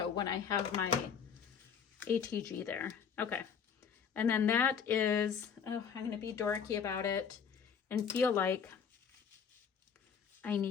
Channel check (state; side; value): quieter; right; 7.1 dB